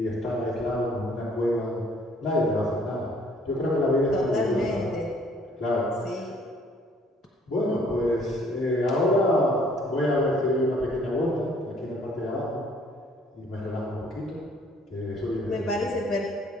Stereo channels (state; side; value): normal; both; correlation 0.60